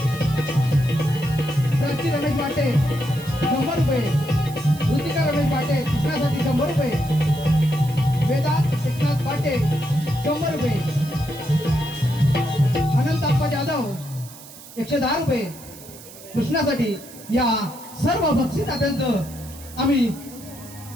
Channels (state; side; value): noise; right; hiss, 18 dB below the sound